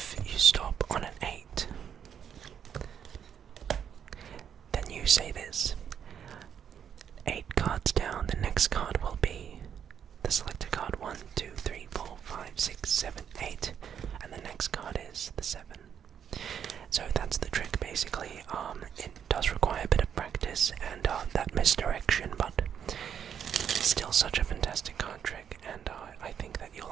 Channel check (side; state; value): left; quieter; 8.4 dB